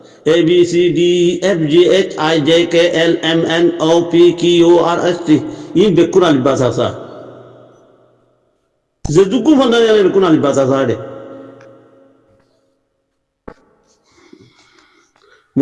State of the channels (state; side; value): identical; both; correlation 1.00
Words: A B C D F G H I J K L M N O P Q R S T E বেক্ষুন আলিফ বাস আসা যে দুগু ফন্ডা নিয়ে বেক্ষুন আলিফ বাস আসা রে